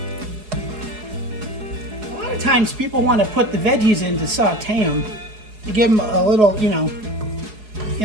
A lot of times people want to put the veggies in to saute them, to give them a little, you know.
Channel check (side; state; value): left; late; 4.7 ms